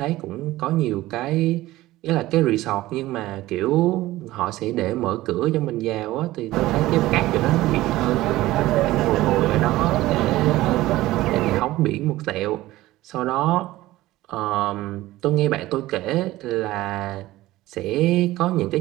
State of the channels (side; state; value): left; quieter; 16.9 dB